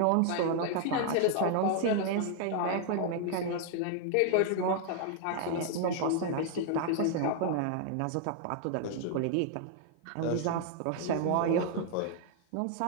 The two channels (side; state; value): both; different; correlation 0.00